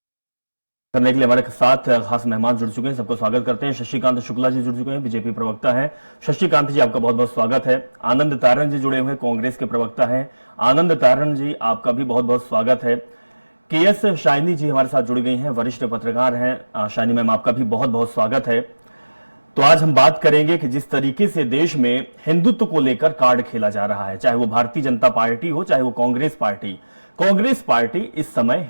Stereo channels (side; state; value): both; inverted; correlation -1.00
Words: करने के लिए हमारे साथ खास मेहमान जुड़ चुके हैं, सबको स्वागत करते हैं। शशिकांत शुक्ला जी जुड़ चुके हैं, बीजेपी प्रवक्ता हैं। शशिकांत जी, आपका बहुत बहुत स्वागत है। आनंद तारण जी जुड़े हुए हैं, कांग्रेस के प्रवक्ता हैं। आनंद तारण जी, आपका भी बहुत बहुत स्वागत है। केएस शाइनी जी हमारे साथ जुड़ गई हैं, वरिष्ठ पत्रकार हैं। शाइनी मैम, आपका भी बहुत बहुत स्वागत है। तो आज हम बात करेंगे कि जिस तरीके से देश में हिंदुत्व को लेकर कार्ड खेला जा रहा है, चाहे वो भारतीय जनता पार्टी हो, चाहे वो कांग्रेस पार्टी इस समय